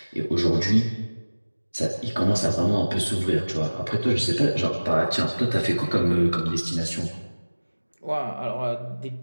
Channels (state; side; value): inverted; both; correlation -1.00